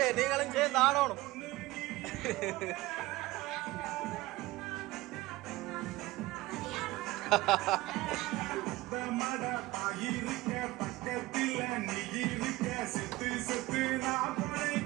நீங்களும் சேர்ந்து ஆடணும். பக்கத்தில் நீ இருக்க செத்து செத்து நான்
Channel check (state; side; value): quieter; left; 19.1 dB